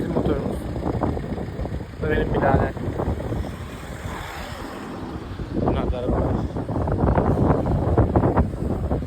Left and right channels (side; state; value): both; identical; correlation 1.00